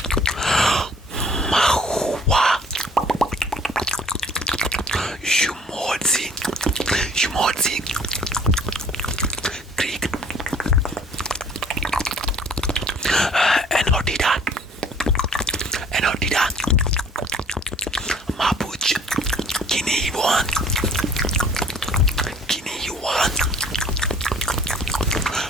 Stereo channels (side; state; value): both; normal; correlation 0.55